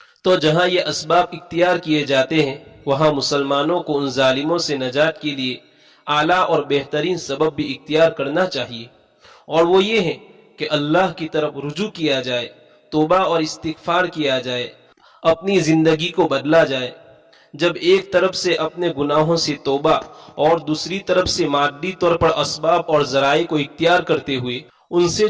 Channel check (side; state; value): both; identical; correlation 1.00